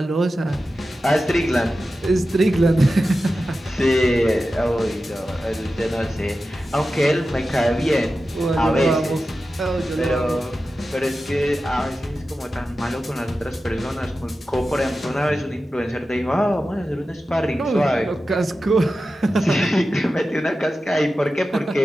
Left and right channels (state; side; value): normal; both; correlation 0.93